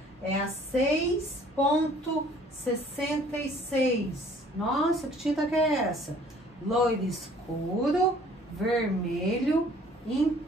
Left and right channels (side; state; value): both; normal; correlation 0.55